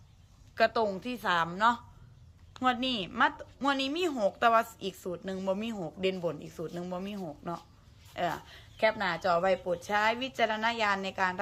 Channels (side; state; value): both; identical; correlation 1.00